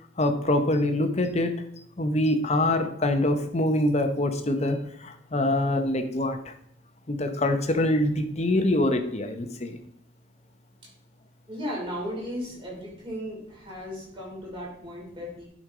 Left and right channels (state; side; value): normal; both; correlation 0.51